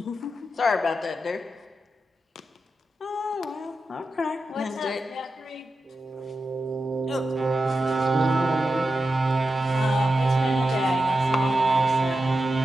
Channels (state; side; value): normal; both; correlation 0.90